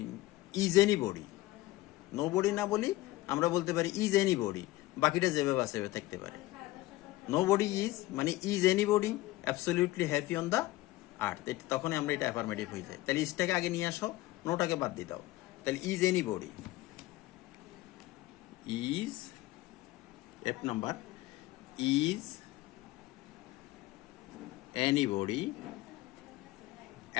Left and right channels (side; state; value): right; quieter; 17.9 dB